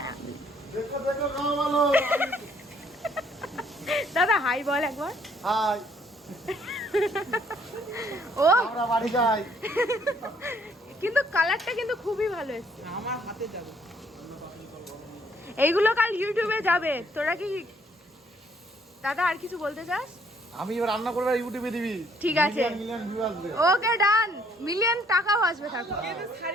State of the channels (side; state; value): both; normal; correlation 0.65